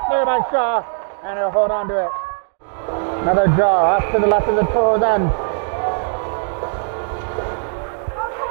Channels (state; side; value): silent; left; 66 dB below the other